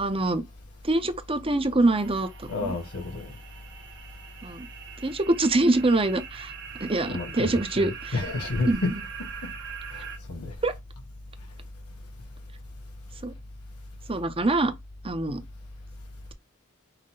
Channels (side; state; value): both; normal; correlation 0.67